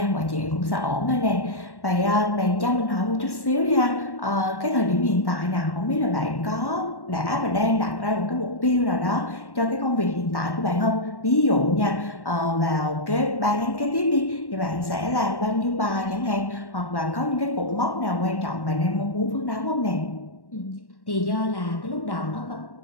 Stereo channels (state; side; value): late; right; 1.1 ms